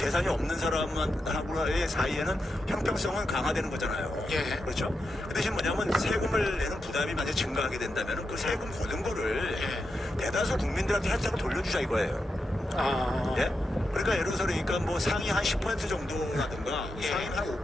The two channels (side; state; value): both; normal; correlation 0.87